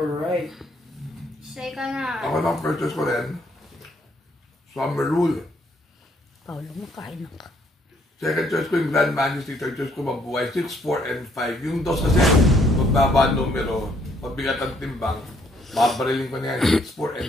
So ikaw na. Ako lang first choice ko rin. Summer Rule. Paulo, makain na ka. Second choice ko yung Grand Majesty. Third choice ko Mabuhay. 6, 4, and 5. Yung dos kasi, magbaba numero, mabigat ang timbang, babarilin ko na yan. 6, 4,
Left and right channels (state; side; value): normal; both; correlation 0.67